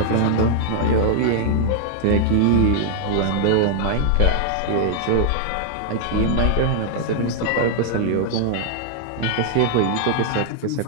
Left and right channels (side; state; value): both; different; correlation 0.00